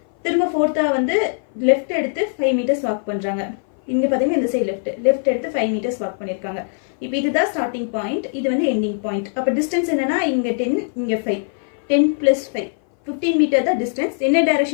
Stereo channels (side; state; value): right; silent; 58 dB below the other